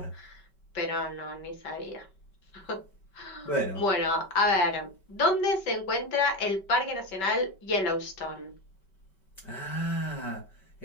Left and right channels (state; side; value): late; right; 5.2 ms